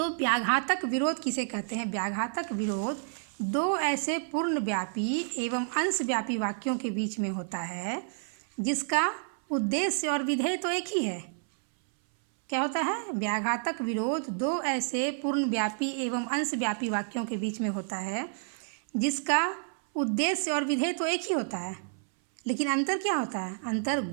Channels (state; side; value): silent; left; 58 dB below the other